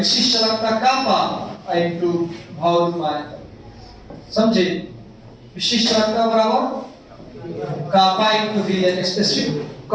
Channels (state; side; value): identical; both; correlation 1.00